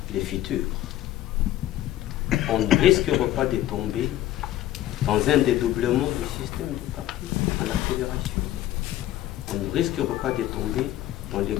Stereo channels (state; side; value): quieter; right; 13.9 dB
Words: le futur. On ne risquera pas de tomber dans un dédoublement du système de parti à la fédération. On ne risquera pas de tomber dans les